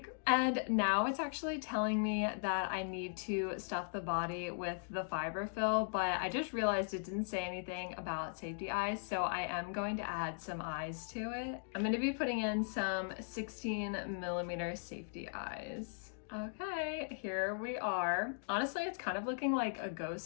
And now it's actually telling me that I need to stuff the body with the fiber fill, but I just realized it didn't say anything about safety eyes, so I am going to add some eyes to it. I'm going to be putting in some 16mm safety eyes. Okay, here we are. Honestly, it's kind of looking like a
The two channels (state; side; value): silent; right; digital silence